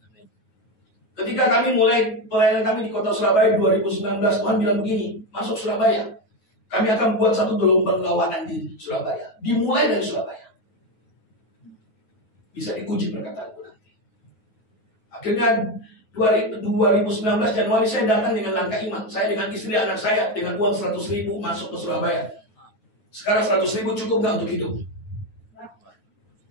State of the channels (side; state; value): right; late; 9.4 ms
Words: Ketika kami mulai pelayanan kami di kota Surabaya 2019, Tuhan bilang begini, masuk Surabaya, kami akan buat satu gelombang kawanan di Surabaya. Dimulai dari Surabaya. Bisa diuji perkataanku nanti. Akhirnya 2019 Januari saya datang dengan langkah iman. Saya dengan istri anak saya dengan uang 100.000 masuk ke Surabaya. Sekarang 100.000 cukup nggak untuk hidup?